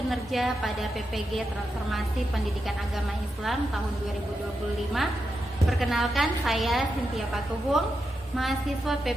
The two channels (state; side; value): normal; both; correlation 0.87